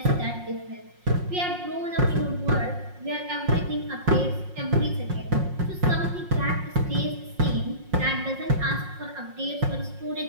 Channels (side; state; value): left; late; 5.5 ms